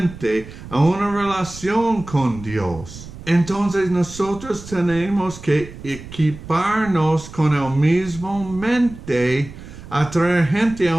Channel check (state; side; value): noise; right; rumble, 15 dB below the sound